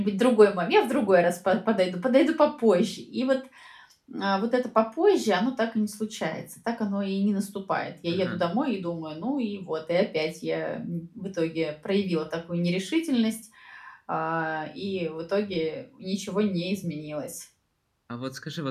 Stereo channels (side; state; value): both; identical; correlation 1.00